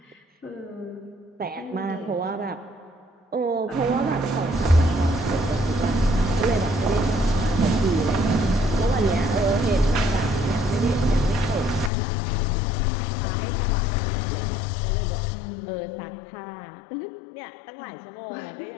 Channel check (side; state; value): right; drops out; at 11.9 s